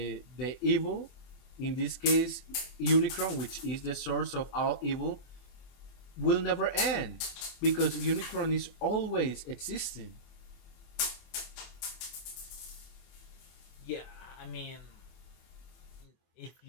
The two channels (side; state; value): right; late; 24 ms